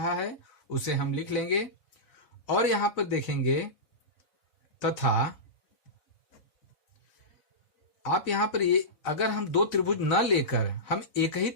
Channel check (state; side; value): late; right; 4.0 ms